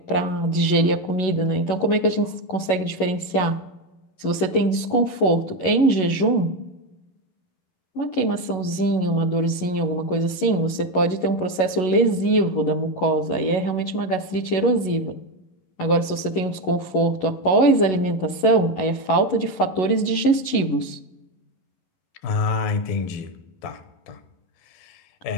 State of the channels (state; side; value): late; right; 11 ms